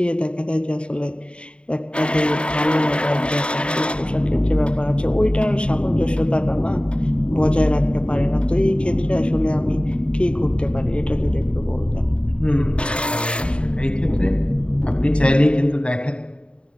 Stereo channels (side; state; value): right; late; 0.056 ms